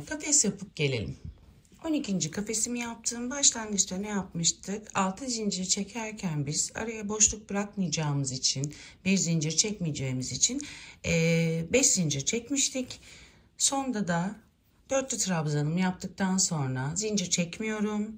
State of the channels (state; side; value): identical; both; correlation 1.00